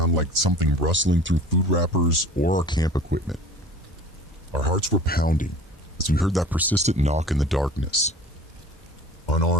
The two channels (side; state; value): both; normal; correlation 0.42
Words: like something rustling through food wrappers or our camp equipment. Our hearts were pounding as we heard that persistent knock in the darkness.